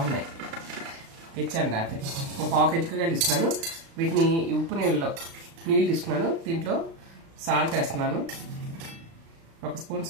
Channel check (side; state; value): left; late; 36 ms